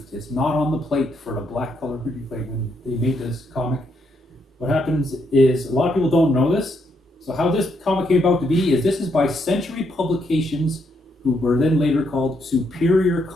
It's not on the plate for the black color printing plate when they made this comic. What happens is, a lot of people don't know this. So how this comic came about to be is this is by Century Publications, who were then later called Superior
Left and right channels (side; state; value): both; normal; correlation 0.76